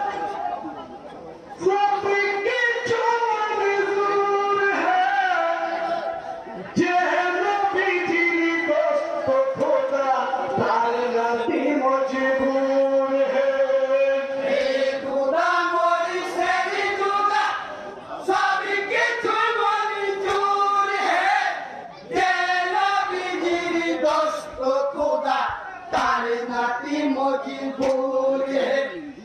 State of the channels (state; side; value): identical; both; correlation 1.00